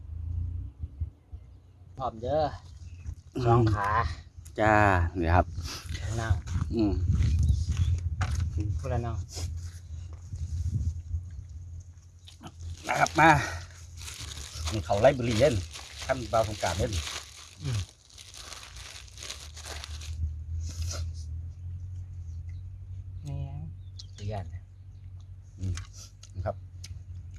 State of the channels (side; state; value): both; identical; correlation 1.00